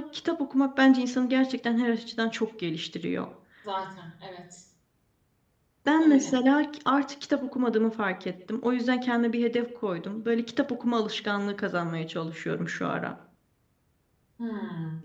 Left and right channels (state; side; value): identical; both; correlation 1.00